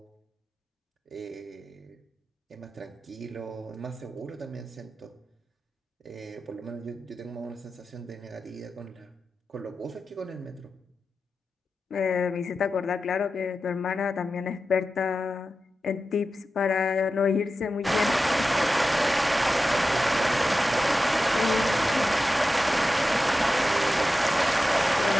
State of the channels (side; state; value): both; normal; correlation 0.92